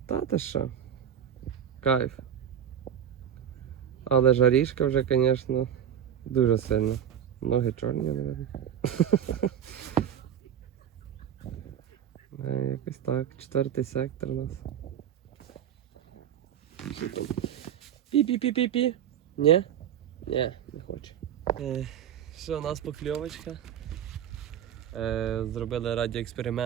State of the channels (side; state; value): left; quieter; 9.3 dB